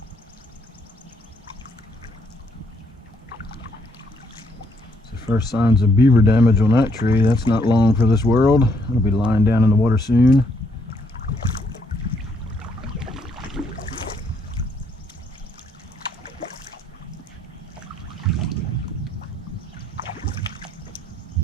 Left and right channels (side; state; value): both; normal; correlation 0.71